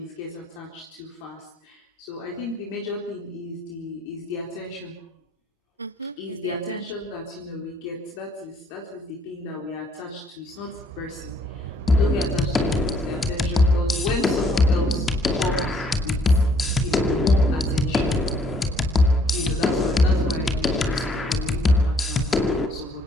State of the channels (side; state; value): both; normal; correlation 0.65